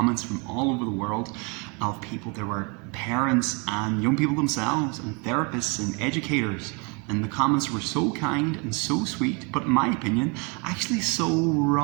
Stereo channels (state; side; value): quieter; left; 31.9 dB